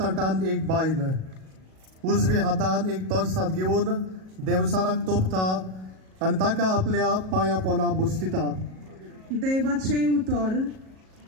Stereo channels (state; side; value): late; left; 37 ms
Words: एक बायल उजव्या हातान एक तोरसाद घेऊन देवसाराक तोपता आणि ताका आपल्या पाया पोना बुसतिता। देवाचे उतर